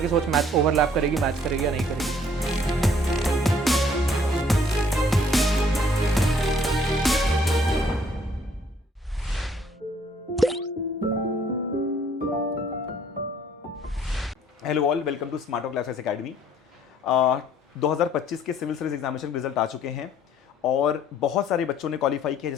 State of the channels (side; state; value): both; normal; correlation 0.61